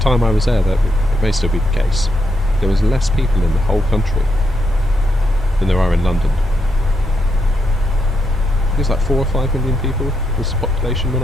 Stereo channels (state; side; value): normal; both; correlation 0.81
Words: I was there, that it may still be the case. There was less people in the whole country than there are in London. I think it's like 4 or 5 million people was the population when